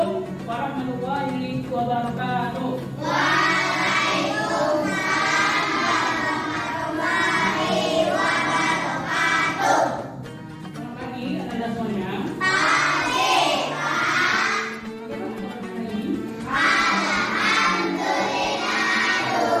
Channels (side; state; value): both; identical; correlation 1.00